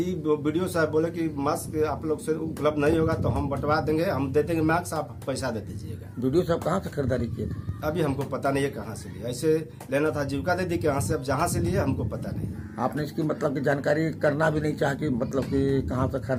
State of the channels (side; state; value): both; identical; correlation 1.00